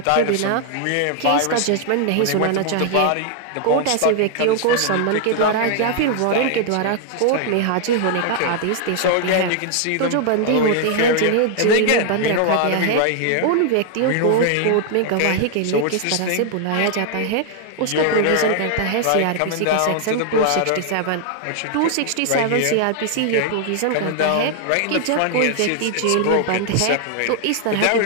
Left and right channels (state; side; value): different; both; correlation 0.00